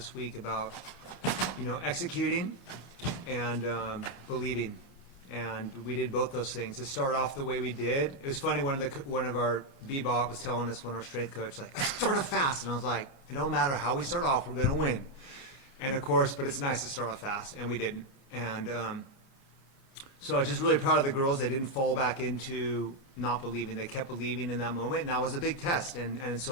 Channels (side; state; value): right; late; 29 ms